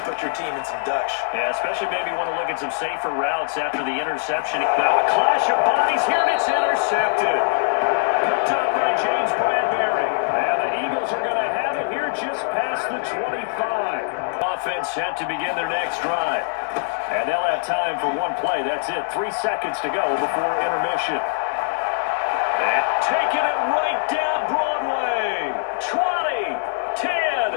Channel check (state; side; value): silent; right; digital silence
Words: put your team in some Dutch. Yeah, especially maybe want to look at some safer routes after the interception. Now a clash of bodies here, and it's intercepted. Picked up by James Bradbury. And the Eagles are going to have it here just past the 25. Offense set to begin their next drive. And they'll have time for one play. That's it. 3 seconds to go before intermission. And taking it right down Broadway. 20,